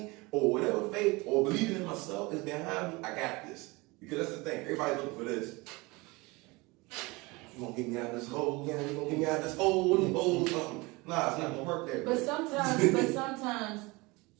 or whatever faith or believing in myself is behind me, I got this. Because that's the thing, everybody's looking for this. You gonna get me out of this hole, yeah, you gonna get me out of this hole, something. Nah, it's not gonna work that way. But sometimes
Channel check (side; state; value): left; quieter; 24.3 dB